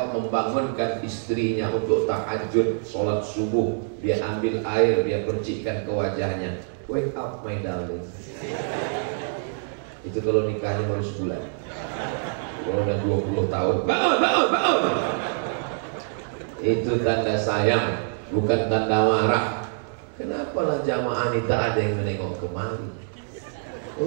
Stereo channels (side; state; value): left; silent; 61 dB below the other